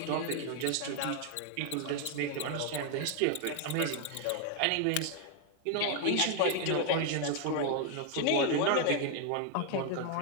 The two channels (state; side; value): different; both; correlation 0.00